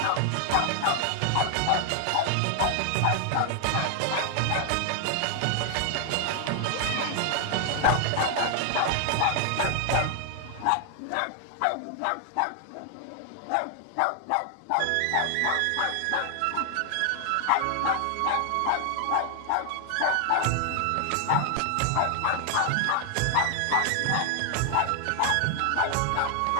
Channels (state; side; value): different; both; correlation 0.00